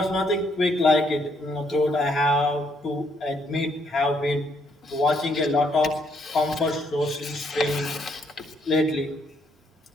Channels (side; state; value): both; normal; correlation 0.71